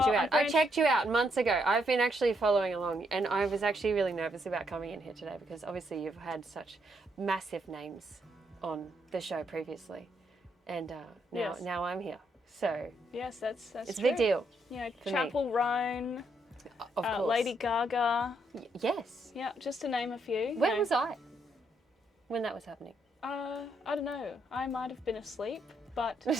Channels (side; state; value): both; normal; correlation 0.76